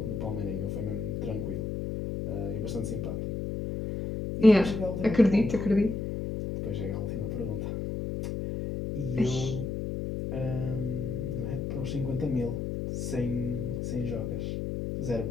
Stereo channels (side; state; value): left; noise; hum, 3 dB below the sound